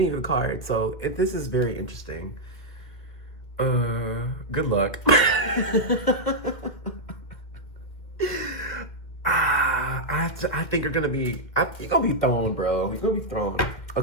of the cards, so this is very interesting. Good luck. I think you're gonna be thrown, bro. You're gonna be thrown.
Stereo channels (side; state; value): right; late; 2.3 ms